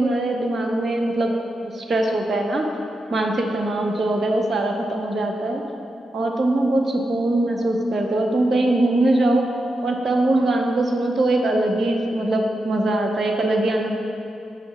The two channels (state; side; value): normal; both; correlation 0.87